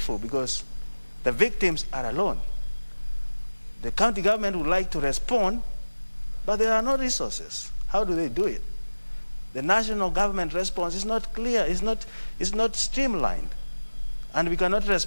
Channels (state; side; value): inverted; both; correlation -1.00